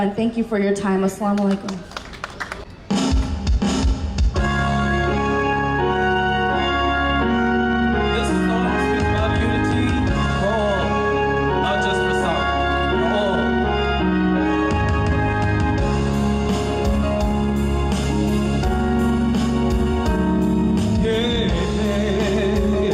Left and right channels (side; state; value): both; identical; correlation 1.00